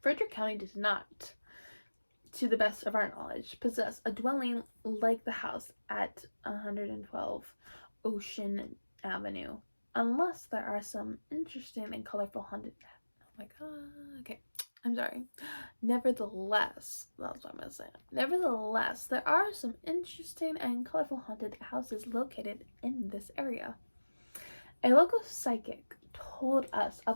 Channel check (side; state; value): both; inverted; correlation -1.00